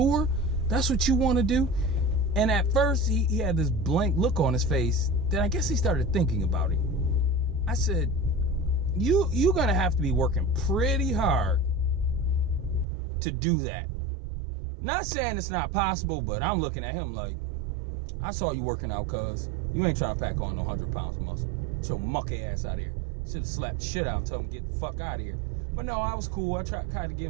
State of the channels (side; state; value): left; drops out; at 12.9 s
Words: that's what you want to do? And at first, he had this blank look on his face. Then I guess he started thinking about it. I said, you're going to have to be working pretty hard to do that. Not saying it's not possible, but I'm looking at him like, I saw you working out, cuz. You ain't trying to pack on no 100 pounds of muscle. Get your mucky ass out of here. Should have slapped the shit out and told him get the fuck out of here. But no, I was cool. I tried kind of